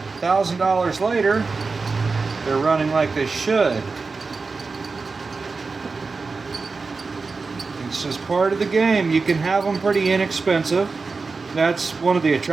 $1,000 later, they're running like they should. It's just part of the game. You can have them pretty inexpensive. That's one of the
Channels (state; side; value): quieter; left; 4.3 dB